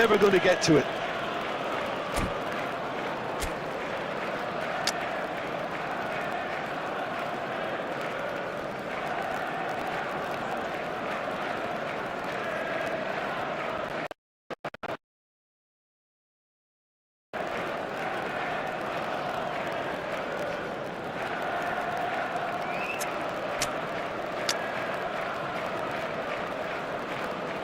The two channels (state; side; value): identical; both; correlation 1.00